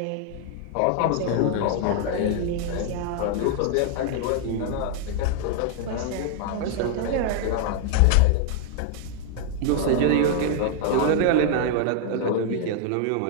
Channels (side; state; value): both; different; correlation 0.00